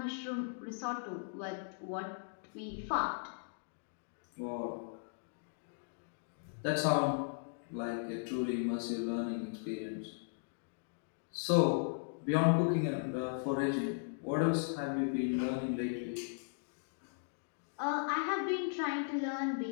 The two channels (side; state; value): right; silent; digital silence